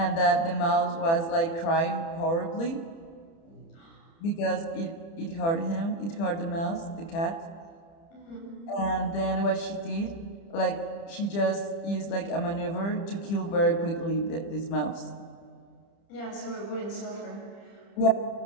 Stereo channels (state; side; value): late; right; 30 ms